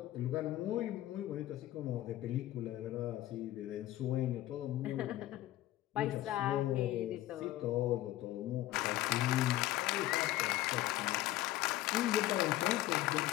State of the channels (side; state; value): right; quieter; 15.2 dB